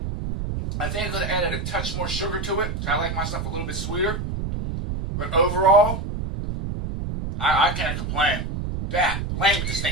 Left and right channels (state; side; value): noise; right; rumble, 4 dB below the sound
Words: I think I could have added a touch more sugar to it. I like my stuff a little bit sweeter. But overall, I can't complain. Blame it, this